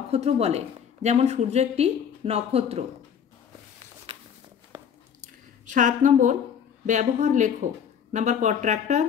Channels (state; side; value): quieter; right; 8.0 dB